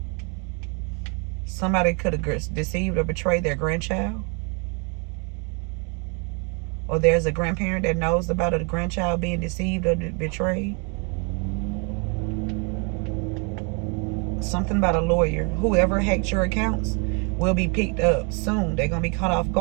Somebody could have deceived or betrayed their grandchild. Or there's a grandparent that knows about a grandchild being deceived or betrayed. Something about a lawyer. Whoever hacked your accounts will be picked up soon. They're going to be caught off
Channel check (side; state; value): left; quieter; 35.2 dB